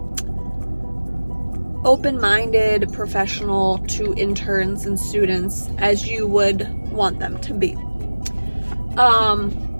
open-minded professional to interns and students as you would want them to be.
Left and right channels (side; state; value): both; inverted; correlation -1.00